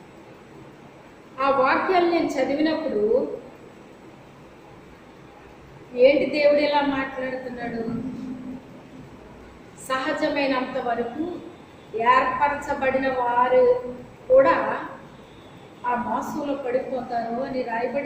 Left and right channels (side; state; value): both; identical; correlation 1.00